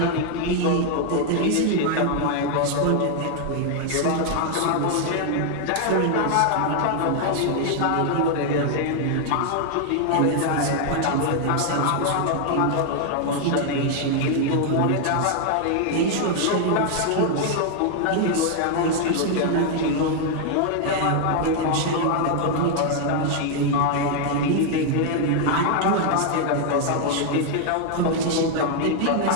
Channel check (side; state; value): both; different; correlation 0.00